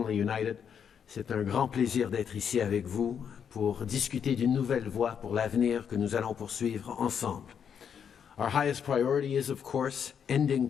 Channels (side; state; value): right; quieter; 7.7 dB